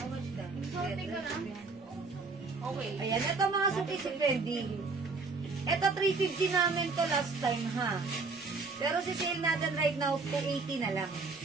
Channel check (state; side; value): quieter; left; 4.1 dB